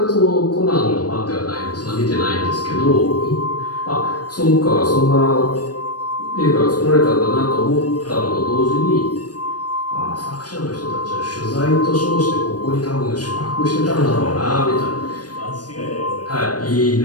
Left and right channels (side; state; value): right; late; 0.69 ms